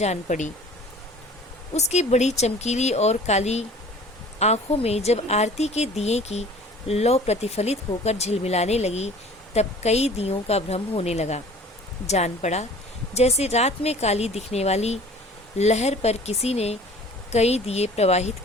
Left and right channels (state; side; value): normal; both; correlation 0.47